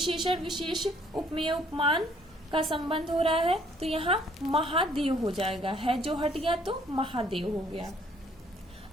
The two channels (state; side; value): normal; both; correlation 0.62